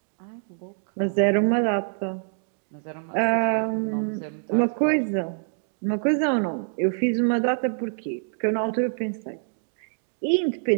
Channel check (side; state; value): left; silent; digital silence